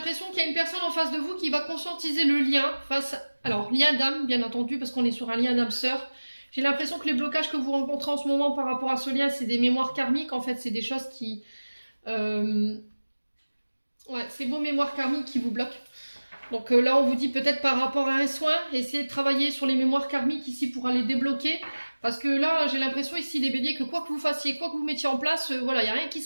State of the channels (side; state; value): both; inverted; correlation -1.00